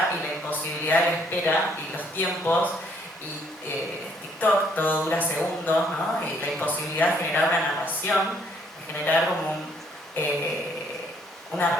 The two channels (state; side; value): normal; both; correlation 0.66